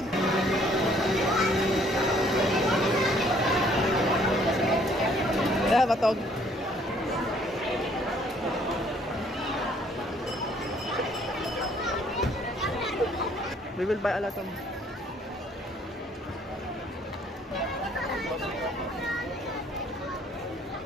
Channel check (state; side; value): normal; both; correlation 0.62